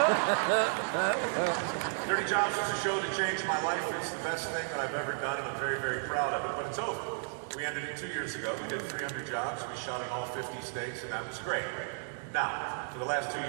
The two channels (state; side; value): silent; left; digital silence